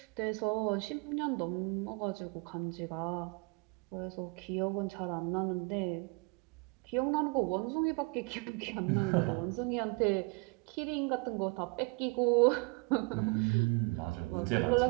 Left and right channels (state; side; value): quieter; left; 30.2 dB